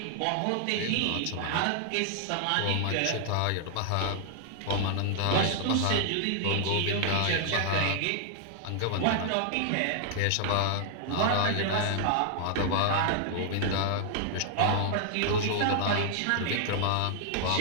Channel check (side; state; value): both; different; correlation 0.00